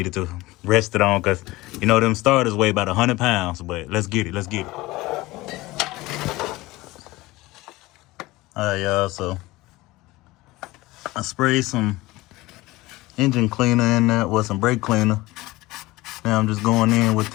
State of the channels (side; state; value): right; quieter; 19.8 dB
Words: to rest it on, cause you know them starters weigh about 100 pounds. But let's get it. Let's get it. All right, y'all. So I sprayed some engine cleaner in there, or some brake cleaner. Now I'm just going in with